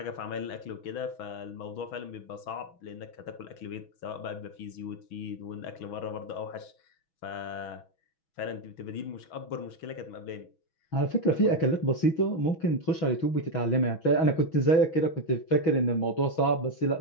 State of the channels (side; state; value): right; late; 6.1 ms